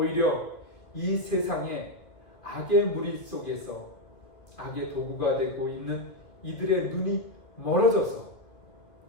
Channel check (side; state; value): right; late; 2.2 ms